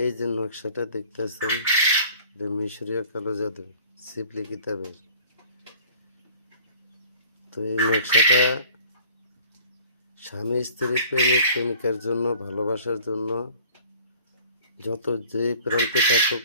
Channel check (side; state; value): both; inverted; correlation -0.49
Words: এই যে নকশাটা দেখতেছেন, এটা মিশরীয় কালো জাদু শিবলি কিতাবের। তো এই নকশাটা স্বামী স্ত্রী প্রেমিক প্রেমিকার জন্য, ভালোবাসার জন্য যত যেই প্রান্তে থাকুক